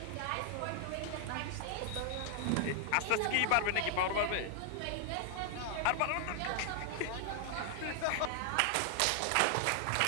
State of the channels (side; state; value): both; different; correlation 0.00